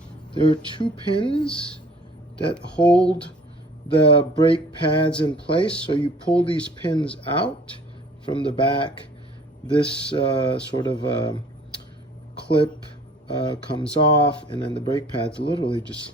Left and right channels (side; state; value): both; normal; correlation 0.51